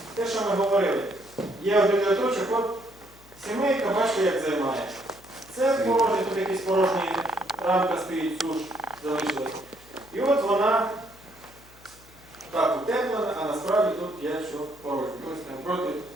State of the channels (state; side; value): noise; left; hum, 24 dB below the sound